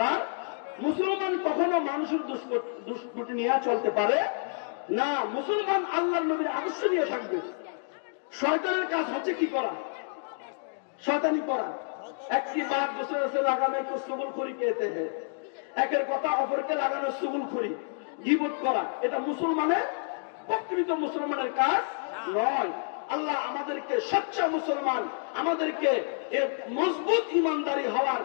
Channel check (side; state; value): right; silent; digital silence